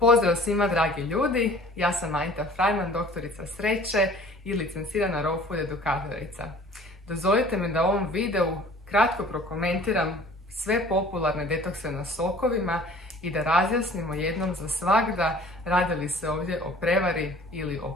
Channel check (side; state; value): both; normal; correlation 0.49